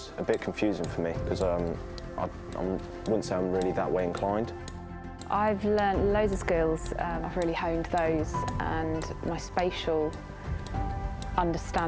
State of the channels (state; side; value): identical; both; correlation 1.00